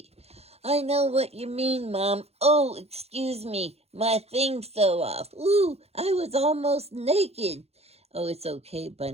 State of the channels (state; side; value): late; left; 0.30 ms